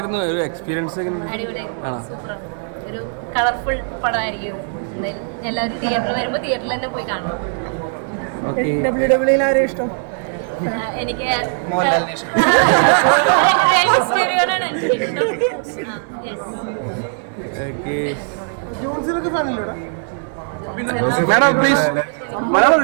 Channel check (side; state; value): left; silent; 62 dB below the other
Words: ഒരു എക്സ്പീരിയൻസ്? ഒരു കളർഫുൾ പടമായിരിക്കും. എല്ലാവരും തിയേറ്ററിൽ വരുമ്പോൾ തിയേറ്ററിൽ തന്നെ പോയി കാണണം. WWE ആരെയും ഇഷ്ടം? എനിക്ക് മാഡം പ്ലീസ്,